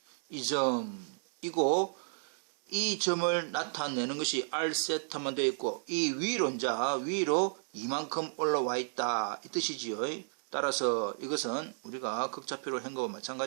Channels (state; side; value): silent; left; digital silence